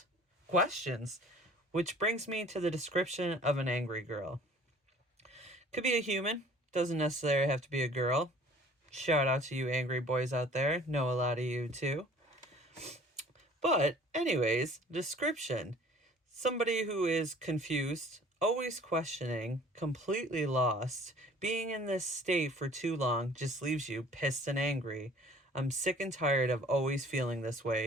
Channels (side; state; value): both; normal; correlation 0.51